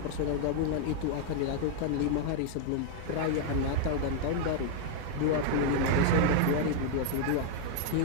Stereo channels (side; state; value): both; different; correlation 0.00